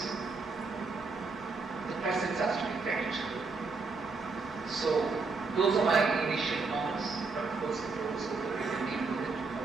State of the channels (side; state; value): left; quieter; 4.2 dB